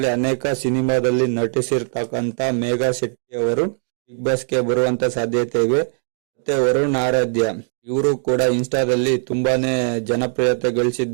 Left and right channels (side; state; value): left; silent; 66 dB below the other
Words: ಅನೇಕ ಸಿನಿಮಾದಲ್ಲಿ ನಟಿಸಿರ್ತಕ್ಕಂತ ಮೇಘಾ ಶೆಟ್ಟಿ ಅವರು ಬಿಗ್ ಬಾಸ್ಗೆ ಬರುವಂತ ಸಾಧ್ಯತೆ ಇವೆ. ಮತ್ತೆ ವರುಣ್ ಆರಾಧ್ಯ, ಇವರು ಕೂಡ ಇನ್ಸ್ಟಾದಲ್ಲಿ ತುಂಬಾನೇ ಜನಪ್ರಿಯತೆ